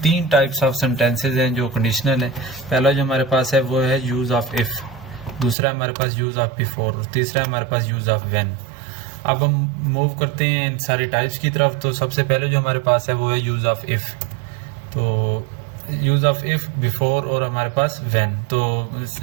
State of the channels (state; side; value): drops out; left; at 5.6 s